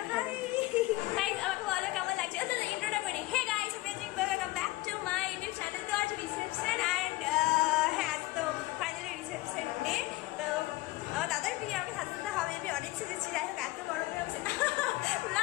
হাই গাইস, আমাকে বলো কেমন লাগছে। ইন্ট্রোটা করি। Hey guys, welcome back to my YouTube channel. তো আজ রিসেপশন অ্যান্ড হ্যাঁ, তো ফাইনালি রিসেপশন ডে। তো আমার দাদার বিয়ে, আমি সাজতে হবে, আমি অনেক সেজেছি। যাই হোক এত গরমে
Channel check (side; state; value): right; quieter; 19.6 dB